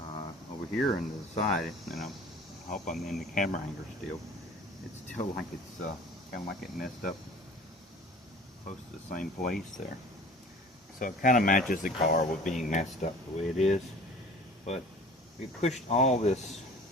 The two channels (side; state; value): both; normal; correlation 0.45